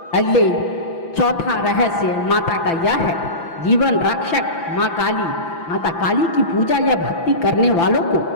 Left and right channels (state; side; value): late; right; 5.9 ms